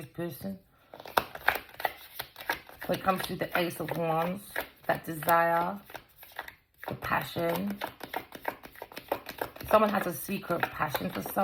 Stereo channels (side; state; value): both; identical; correlation 1.00